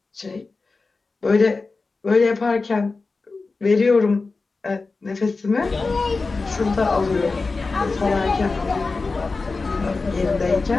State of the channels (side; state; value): right; quieter; 3.9 dB